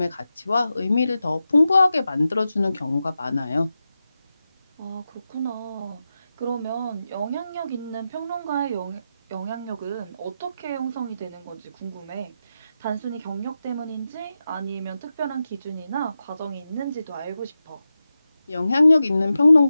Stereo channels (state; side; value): inverted; both; correlation -0.90